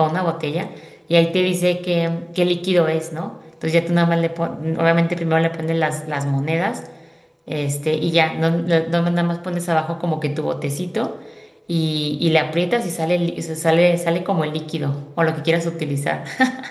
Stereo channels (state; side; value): identical; both; correlation 1.00